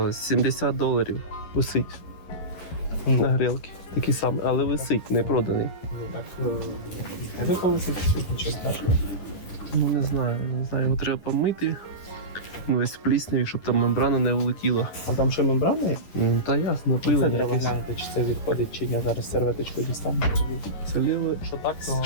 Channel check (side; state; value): right; late; 10 ms